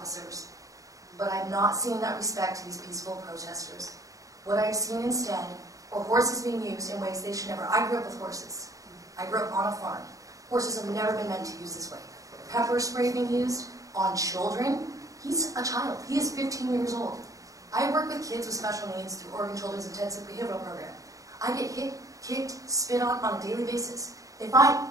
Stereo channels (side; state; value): left; late; 0.16 ms